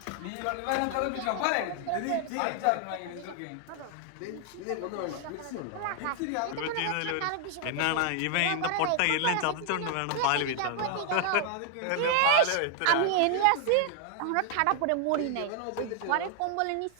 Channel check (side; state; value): both; different; correlation 0.00